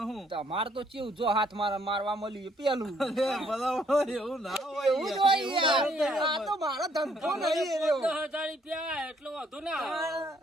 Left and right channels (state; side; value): normal; both; correlation 0.67